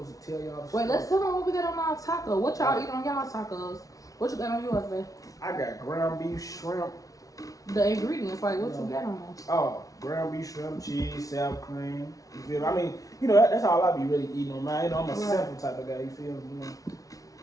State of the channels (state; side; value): late; right; 0.17 ms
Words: tell y'all. Wait, let's tell them what we got on our taco. What y'all eat on y'all tacos? What you got on yours, babe? I got ground beef, shrimp. The ingredients, like what you got on them? Oh, ground beef, shrimp, cheese, sour cream. You feel me? I mean, you know, that's all I be really eating on mine. You know, I'm a simple type of guy. You feel me?